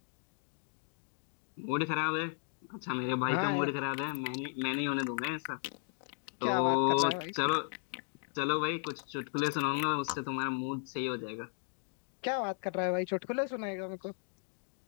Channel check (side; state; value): right; silent; 54 dB below the other